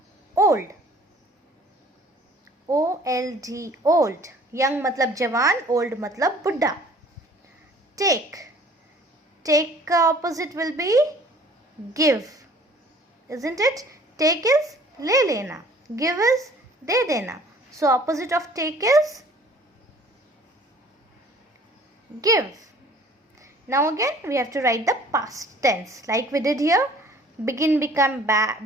old. O-L-D, old. Young matlab jawan, old matlab buddha. Take. Take ka opposite will be give. Isn't it? Take is le lena. Give is de dena. So opposite of take is give. Now again we have to write the past tense like we did here. Begin, become,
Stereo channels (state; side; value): normal; both; correlation 0.52